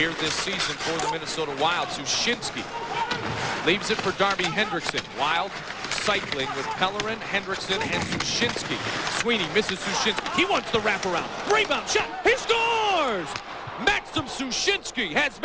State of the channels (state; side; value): identical; both; correlation 1.00